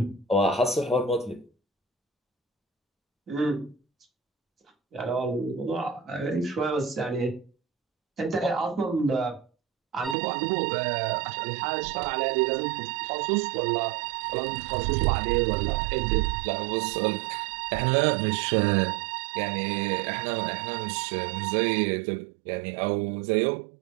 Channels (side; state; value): left; drops out; at 10.2 s